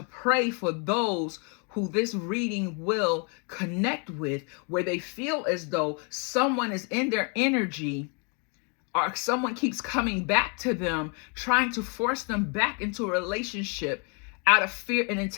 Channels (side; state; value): right; quieter; 36.4 dB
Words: pray for those who this reading will connect with, where they feel as though someone is in their energy, or someone keeps coming back to them, trying to force them back into a relationship out of fear and